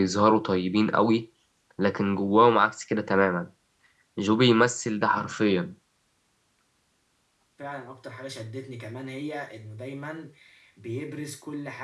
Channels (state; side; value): identical; both; correlation 1.00